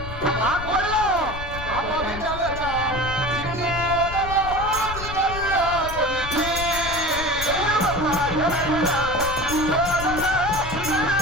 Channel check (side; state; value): left; noise; rumble, 9 dB below the sound